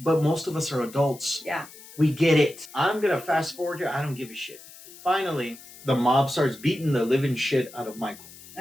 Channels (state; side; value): noise; left; hiss, 19 dB below the sound